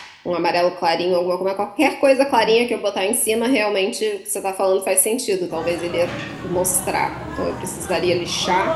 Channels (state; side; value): identical; both; correlation 1.00